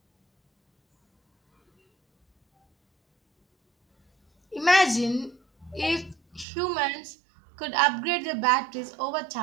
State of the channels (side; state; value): left; drops out; at 6.5 s